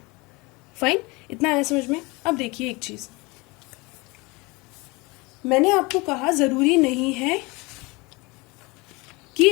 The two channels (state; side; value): quieter; right; 25.3 dB